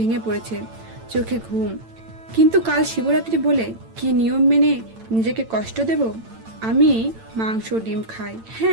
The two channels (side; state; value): left; late; 8.9 ms